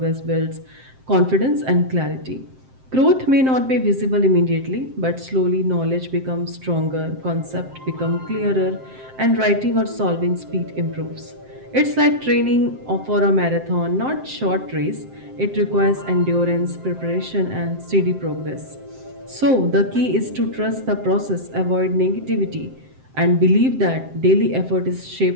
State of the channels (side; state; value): left; late; 7.7 ms